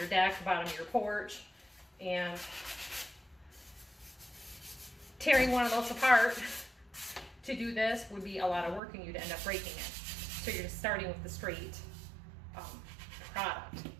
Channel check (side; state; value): left; drops out; at 8.8 s